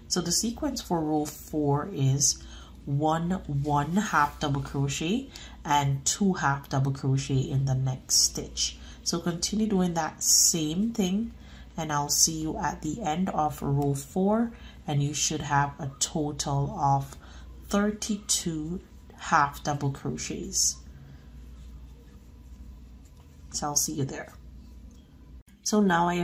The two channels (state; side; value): identical; both; correlation 1.00